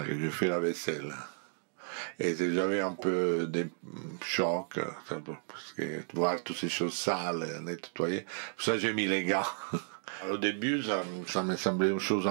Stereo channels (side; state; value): left; silent; digital silence